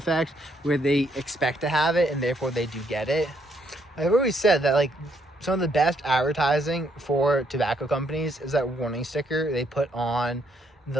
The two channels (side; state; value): both; normal; correlation 0.72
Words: where they expect to have it and therefore they do get it. I've always said that like some of the best advertising for tobacco companies is that warning sticker they put on